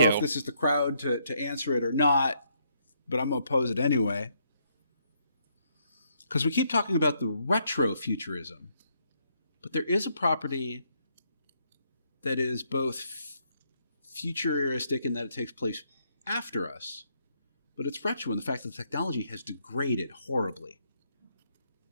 if this is the crowd to answer it or not, but I'm going to pose it anyway. Because we keep talking about the retrofuturism. But there is a property that is both futuristic in that it takes place after us, but it's retro in the fact that the technology has degraded horribly.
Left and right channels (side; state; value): both; inverted; correlation -0.73